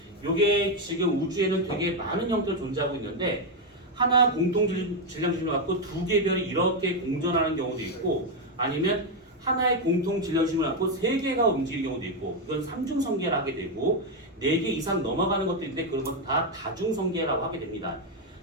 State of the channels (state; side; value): normal; both; correlation 0.05